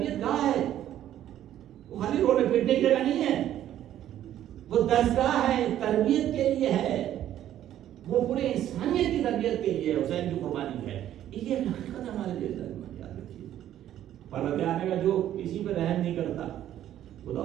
گاہ ہے, وہ خالی روڈ پیٹنے کی جگہ نہیں ہے, وہ درسگاہ ہے, تربیت کے لیے ہے, وہ پورے انسانیت کی تربیت کے لیے حسین کی قربانی ہے. یہ ایک حقیقت ہے ہمارے لیے. یاد رکھیے, پرورتے آنے کا جو کسی پہ رحم نہیں کرتا خدا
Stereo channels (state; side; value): quieter; left; 11.8 dB